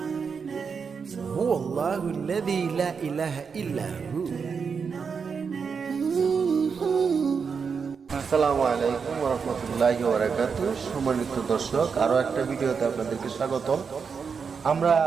الله الذي لا إله إلا هو আসসালামু আলাইকুম ওয়া রাহমাতুল্লাহি ওয়া বারাকাতুহু। সম্মানিত দর্শক, আরো একটা ভিডিওতে আপনাদেরকে স্বাগতম। আমরা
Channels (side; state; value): left; quieter; 5.8 dB